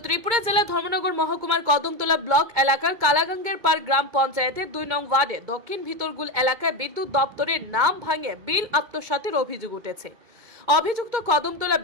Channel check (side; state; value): left; late; 2.2 ms